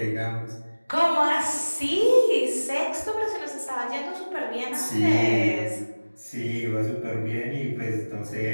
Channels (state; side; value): inverted; both; correlation -1.00